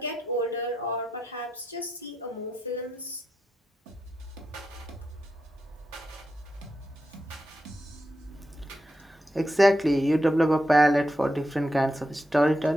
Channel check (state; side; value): normal; both; correlation 0.86